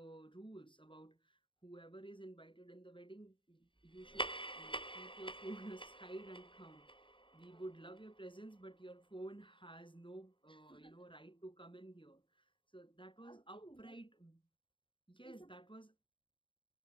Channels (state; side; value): late; right; 0.24 ms